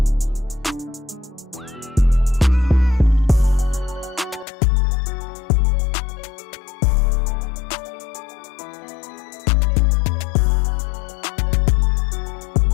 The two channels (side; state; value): right; drops out; at 4.5 s